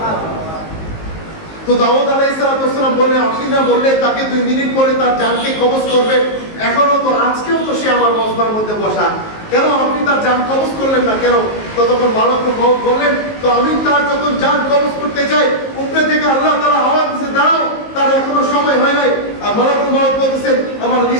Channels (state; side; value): late; right; 19 ms